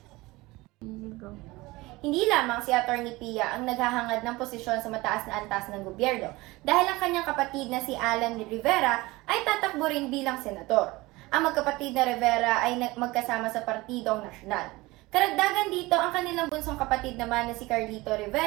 Hindi lamang si Atty. Pia ang naghahangad ng posisyon sa mataas na antas ng gobyerno dahil ang kanyang kapatid na si Alan Rivera ay tatakbo rin bilang senador. Ang magkapatid na Rivera ay magkasama sa Partidong Nasyonal. Karagdagan dito, ang kanilang bunsong kapatid naman na si Carlito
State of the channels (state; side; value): quieter; left; 21.1 dB